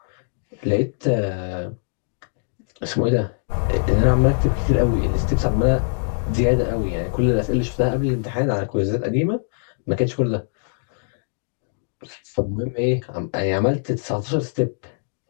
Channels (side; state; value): right; silent; digital silence